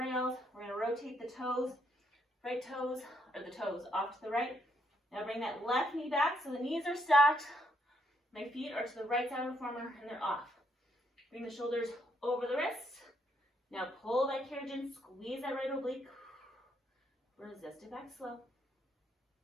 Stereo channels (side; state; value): both; normal; correlation 0.74